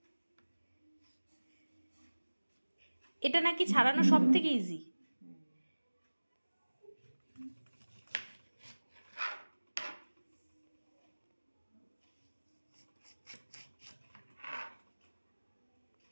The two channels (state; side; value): inverted; both; correlation -1.00